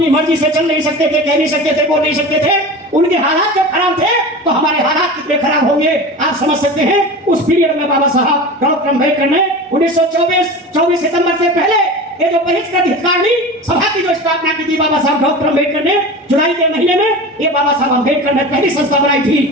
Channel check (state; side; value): normal; both; correlation 0.32